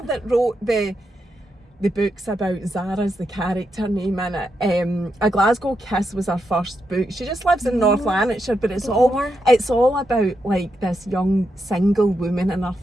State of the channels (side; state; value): both; normal; correlation 0.83